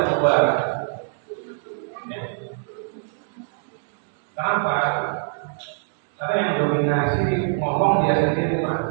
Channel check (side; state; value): left; silent; digital silence